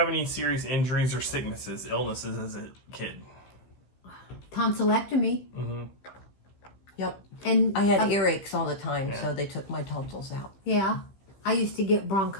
any serious injuries or sicknesses, illnesses as a kid? Tonsillectomy. Mm-hmm. Yep. And I had earaches all the time, Yeah. so they took my tonsils out. yeah, I used to get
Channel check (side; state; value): right; late; 15 ms